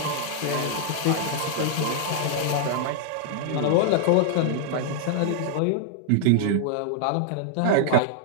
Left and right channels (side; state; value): both; different; correlation -0.01